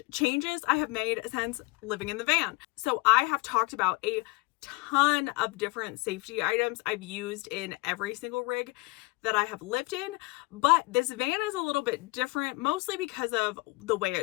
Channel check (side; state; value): right; quieter; 24.6 dB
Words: / changes I have made since living in the van. So I have talked about a ton of different safety items I've used in every single rig that I have lived in, but this van is a little bit different, mostly because of the way